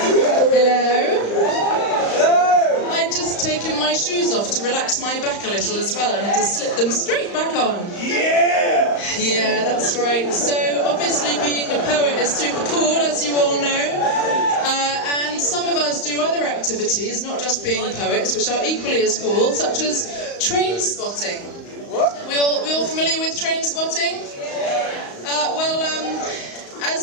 shoes off to relax my back a little as well and to slip them straight back on. Yeah! Yeah, that's right. So obviously being a poet is super cool, as you all know. And some of us do other activities, not just being poets, which are equally as cool, such as train spotting. We all familiar with train spotting?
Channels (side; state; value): right; late; 35 ms